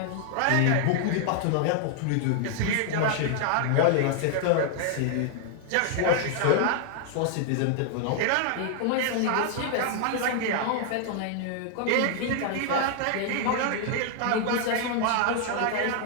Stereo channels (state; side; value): different; both; correlation 0.00